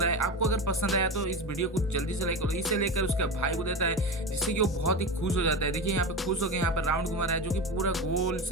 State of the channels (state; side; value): normal; both; correlation 0.23